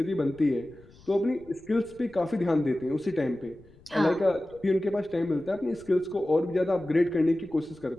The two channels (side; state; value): left; noise; rumble, 25 dB below the sound